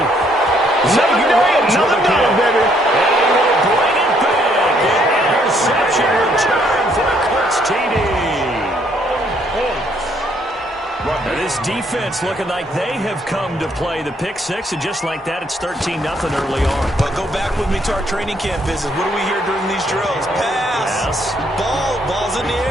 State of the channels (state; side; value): normal; both; correlation 0.68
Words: Another day, another dollar, baby. And he will bring it back. defense looking like they have come to play. The pick six, and just like that, it's 13-0 early on. But go back with me to our training camp visits. What do we hear during these drills? Pass. Ball's in the